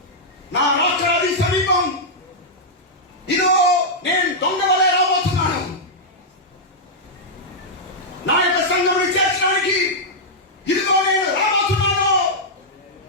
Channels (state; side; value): normal; both; correlation -0.07